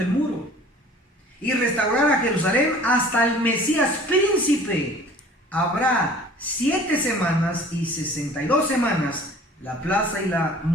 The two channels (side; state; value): both; normal; correlation 0.48